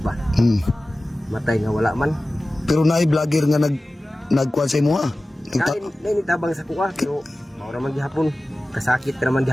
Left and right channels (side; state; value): both; normal; correlation 0.96